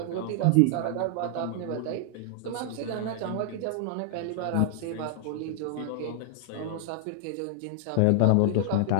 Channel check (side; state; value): both; different; correlation -0.01